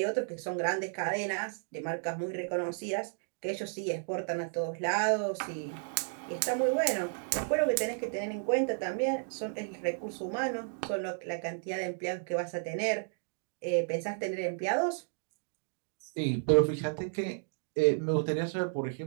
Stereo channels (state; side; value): silent; left; digital silence